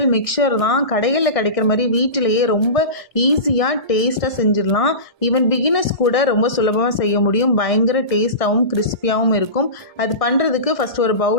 mixture தான். கடைகளில் கிடைக்கிற மாதிரி வீட்டிலேயே ரொம்ப ஈஸியாக டேஸ்ட்டாக செஞ்சிடலாம். ஈவன் பிகினர்ஸ் கூட ரொம்ப சுலபமாக செய்ய முடியும். பயங்கர டேஸ்ட்டாகவும் கிறிஸ்பியாகவும் இருக்கும். அது பண்ணுறதுக்கு ஃபஸ்ட் ஒரு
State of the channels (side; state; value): right; late; 1.6 ms